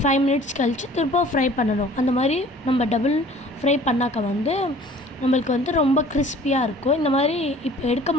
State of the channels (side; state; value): both; normal; correlation 0.49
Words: 5 மினிட்ஸ் கழித்து திரும்ப ஃப்ரை பண்ணணும். அந்த மாதிரி நம்ம டபுள் ஃப்ரை பண்ணாக்க நம்மளுக்கு ரொம்ப கிறிஸ்பியாக இருக்கும். இந்த மாதிரி இப்போ